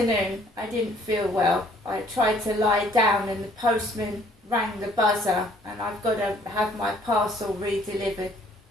I didn't feel well. I tried to lie down and the postman rang the buzzer, and I've got to have my parcel re-delivered.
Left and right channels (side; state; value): both; normal; correlation 0.60